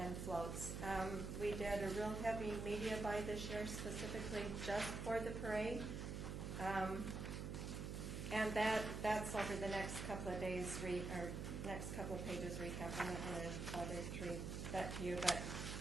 floats. We did a real heavy media buy this year specifically just for the parade. And that's over the next couple of days, or next couple of pages recap. I'm not going to bother to read that to you, but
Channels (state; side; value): noise; right; hum, 4 dB below the sound